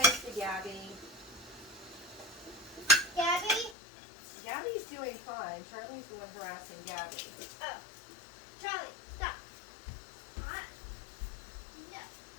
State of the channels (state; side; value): drops out; right; at 3.8 s